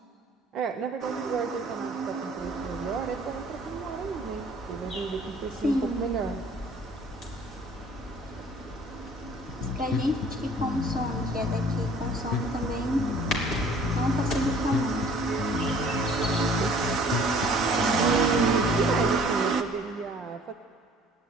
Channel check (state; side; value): normal; both; correlation 0.53